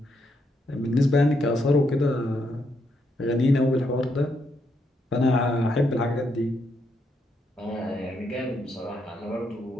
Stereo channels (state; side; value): normal; both; correlation 0.78